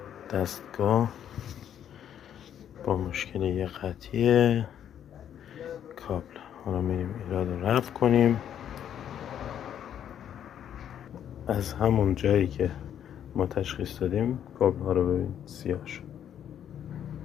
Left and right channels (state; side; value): quieter; right; 9.7 dB